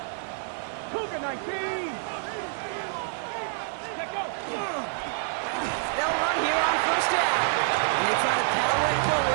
Cougar 19. Let go. They'll run here on 1st down. And they try to power it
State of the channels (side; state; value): left; silent; 60 dB below the other